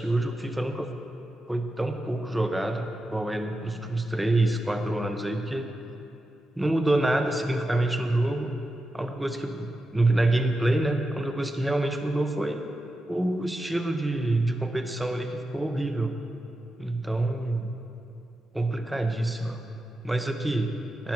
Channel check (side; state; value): both; normal; correlation 0.90